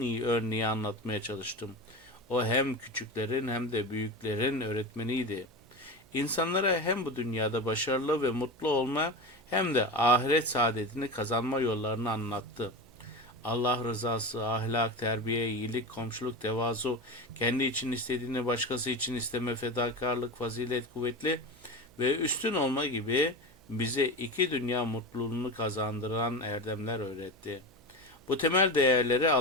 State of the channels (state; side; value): noise; right; hum, 27 dB below the sound